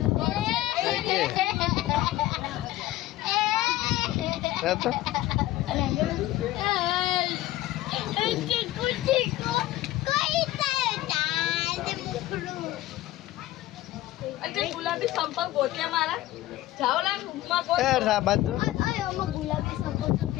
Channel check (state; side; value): quieter; right; 15.8 dB